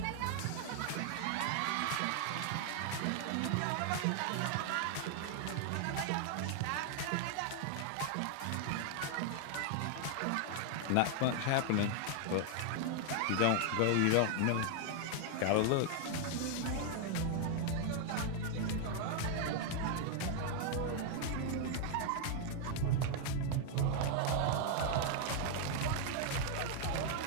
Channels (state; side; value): different; both; correlation 0.00